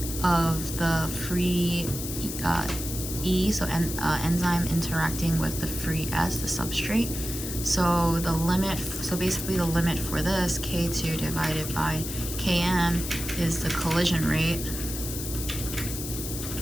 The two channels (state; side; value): noise; left; hiss, 7 dB below the sound